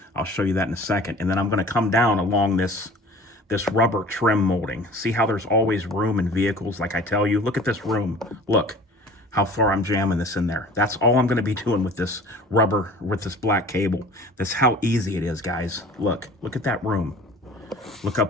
I'll show you that in a second. And then I'm going to come down along this rubber trim molding. See how there's always room in vehicles, like I tell you? Look at this room. Look how far I'm jamming this in there. That's all I'm going to be doing with this rubber, with this black cable. That's how easy it is, guys. Look at that room. Look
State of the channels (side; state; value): both; normal; correlation 0.44